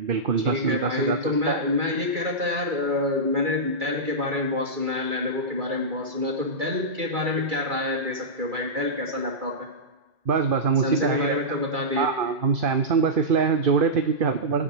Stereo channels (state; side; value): late; left; 2.3 ms